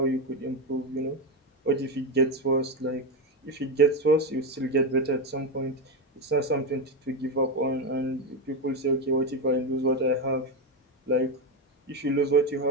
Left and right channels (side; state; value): both; normal; correlation 0.11